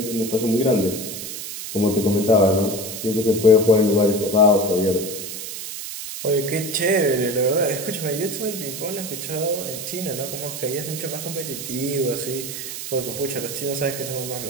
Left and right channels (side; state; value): right; noise; hiss, 8 dB below the sound